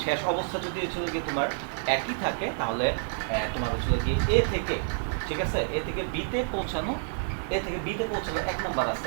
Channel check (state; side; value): silent; left; digital silence